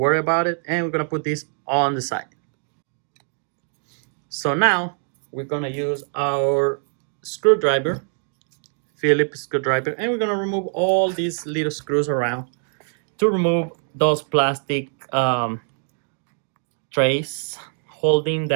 about it. And we're gonna put this on the side. So now we're gonna use our screwdriver, Phillips screwdriver, and we're gonna remove all these little screws around to remove those plastic trays holding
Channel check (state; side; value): silent; left; 63 dB below the other